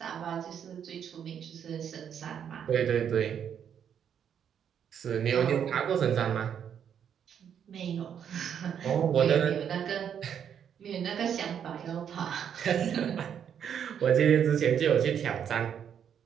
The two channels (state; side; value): quieter; left; 8.5 dB